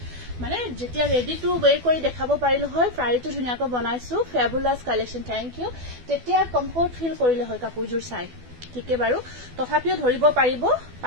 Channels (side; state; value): left; late; 12 ms